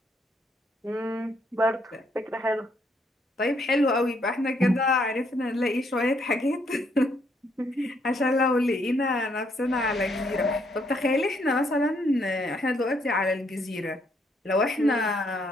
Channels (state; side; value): normal; both; correlation 0.72